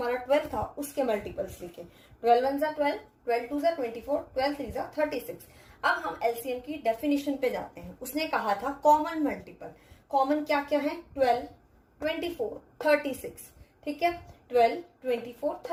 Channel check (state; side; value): identical; both; correlation 1.00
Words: 12 था उसके मल्टीपल्स लिखे। 12 1 जा 12, 12 2 जा 24, 12 3 जा 36। अब हम एलसीएम की डेफिनेशन पे जाते हैं। उसने कहा था कॉमन मल्टीपल। कॉमन क्या क्या है? 12, 24, 36, ठीक है। 12, 24,